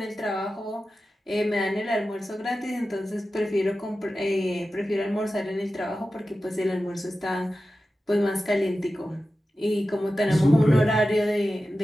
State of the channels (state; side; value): normal; both; correlation 0.94